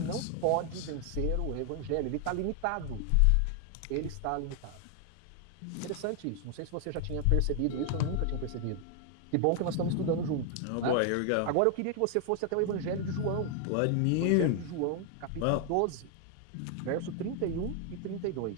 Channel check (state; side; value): different; both; correlation 0.00